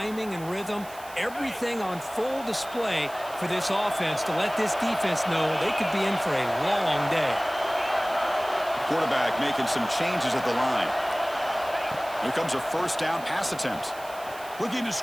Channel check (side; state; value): right; noise; hiss, 19 dB below the sound